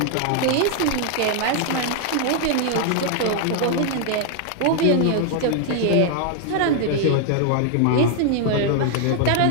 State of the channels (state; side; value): different; both; correlation 0.00